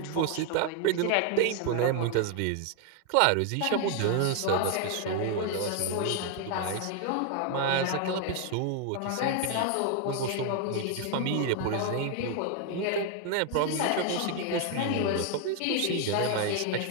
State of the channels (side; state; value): both; different; correlation 0.01